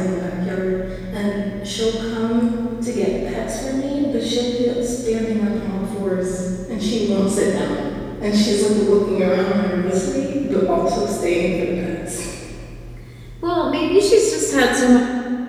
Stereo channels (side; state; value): both; identical; correlation 1.00